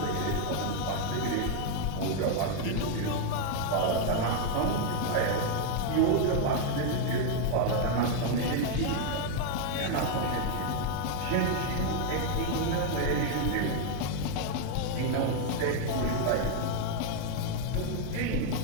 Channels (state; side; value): different; both; correlation 0.00